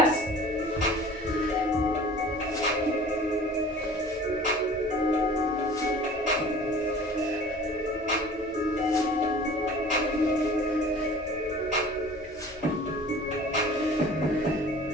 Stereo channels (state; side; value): normal; both; correlation 0.45